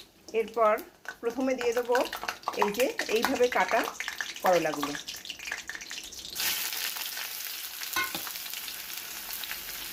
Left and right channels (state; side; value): identical; both; correlation 1.00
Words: এরপর প্রথমে দিয়ে দেবো এই যে এইভাবে কাটা করলাগুলো।